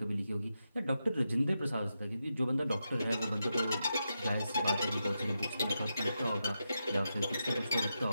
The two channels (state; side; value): inverted; both; correlation -0.87